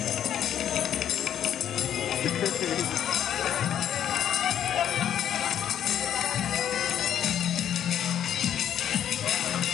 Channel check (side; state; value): right; quieter; 10.0 dB